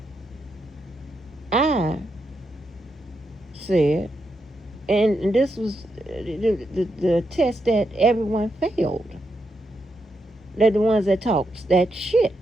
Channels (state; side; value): normal; both; correlation 0.83